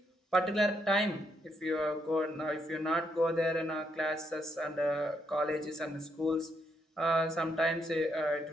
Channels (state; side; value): normal; both; correlation 0.77